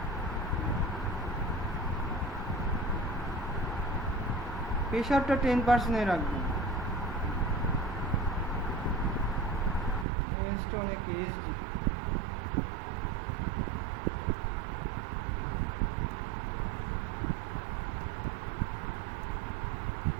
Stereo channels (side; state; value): left; drops out; at 10.1 s